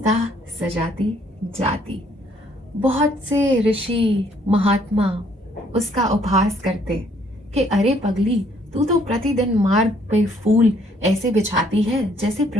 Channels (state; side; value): normal; both; correlation 0.65